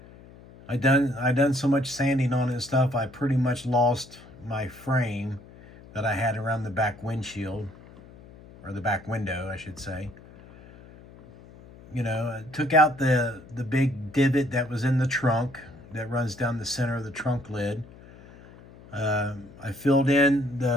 I done so much sanding on it and stuff, I pretty much lost my frame that I had around the back windshield, or the back window, I should say. I took out the big divot that was in the trunk that runs down the center of the trunk lid. I filled in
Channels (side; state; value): left; noise; hum, 21 dB below the sound